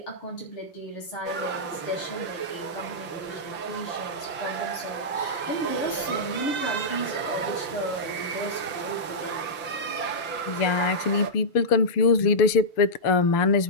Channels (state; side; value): late; right; 5.9 ms